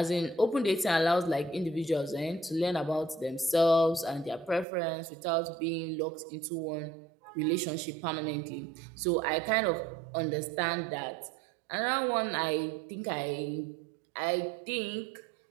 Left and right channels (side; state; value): left; drops out; at 4.7 s